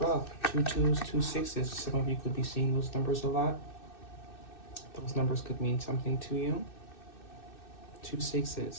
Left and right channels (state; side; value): late; right; 2.6 ms